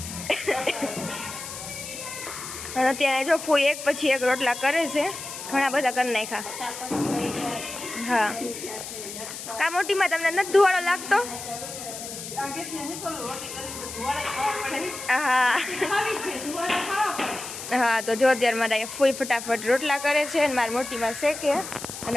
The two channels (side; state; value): left; noise; hiss, 9 dB below the sound